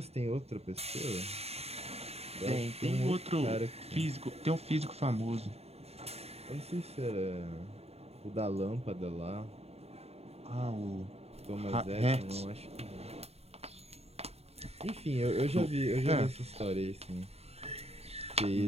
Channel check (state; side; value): late; left; 0.30 ms